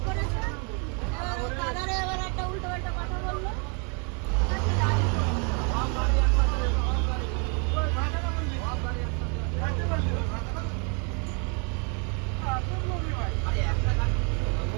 করেছে, এবার ওই দাদারে এবার একটা উল্টো পাল্টা কথা বললো।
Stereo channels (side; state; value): left; quieter; 36.8 dB